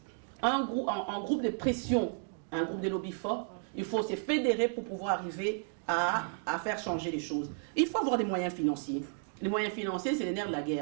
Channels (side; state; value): left; silent; 56 dB below the other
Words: un groupe de pression, un groupe de lobby fort. Il faut se fédérer pour pouvoir arriver à faire changer les choses. Il faut avoir des moyens financiers. Les moyens financiers, c'est les nerfs de la